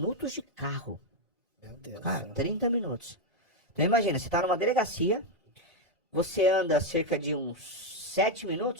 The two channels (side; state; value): both; normal; correlation 0.04